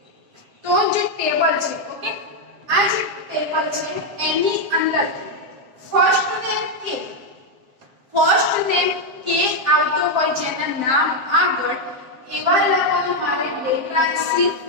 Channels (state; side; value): late; left; 7.5 ms